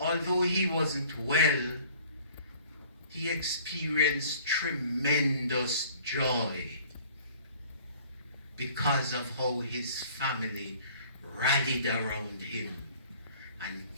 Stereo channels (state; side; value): inverted; both; correlation -0.52